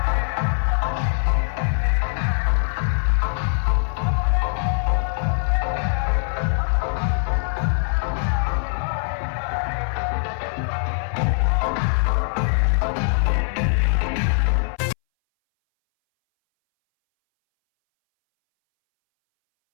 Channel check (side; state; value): right; silent; 61 dB below the other